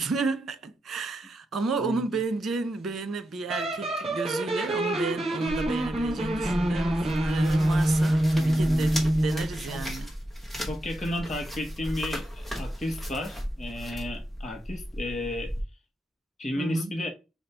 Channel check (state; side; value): normal; both; correlation 0.85